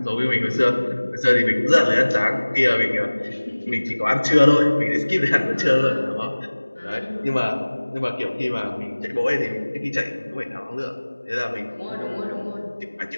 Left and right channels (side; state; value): both; inverted; correlation -1.00